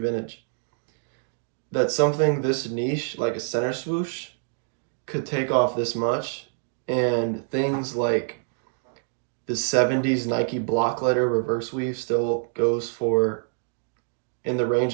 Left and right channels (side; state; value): left; silent; digital silence